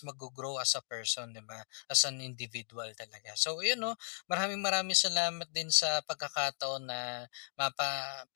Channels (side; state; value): right; silent; digital silence